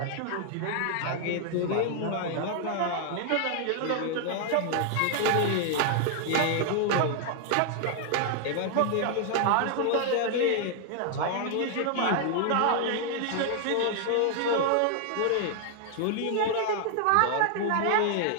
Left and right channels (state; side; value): different; both; correlation 0.00